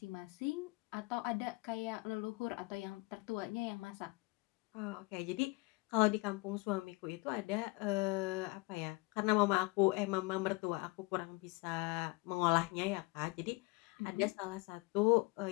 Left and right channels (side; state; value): right; quieter; 25.0 dB